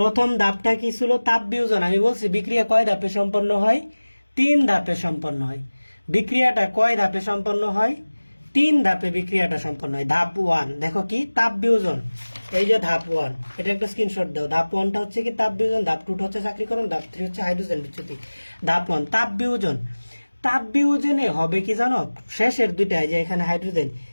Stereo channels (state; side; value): inverted; both; correlation -1.00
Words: ধাপটা কি ছিল, তাপ বিয়োজন। আমি বলছি বিক্রিয়া কয় ধাপে সম্পন্ন হয়, 3 ধাপে সম্পন্ন হয়। বিক্রিয়াটা কয় ধাপে সম্পন্ন হয়, 3 ধাপে বিক্রিয়াটা সম্পন্ন হয়। ধাপ 1 দেখো কি তাপ বিয়োজন, এই যে ধাপ 1, এটা একটা স্ক্রিনশট দাও। ধাপ 1টা হচ্ছে কি তাপ বিয়োজন, ধাপ 2টা হচ্ছে চাকরিকরণ, ধাপ 3 হচ্ছে হাইড্রোজেন বিচ্যুতি। ধাপ 1 তাপ বিয়োজন। তাপ বিয়োজনে হবে কি জানো, শেষের 2টা যে এখানে হাইড্রোজেন,